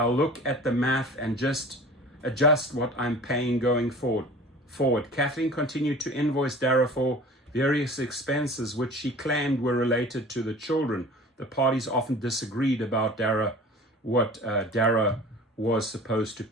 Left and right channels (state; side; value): normal; both; correlation 0.42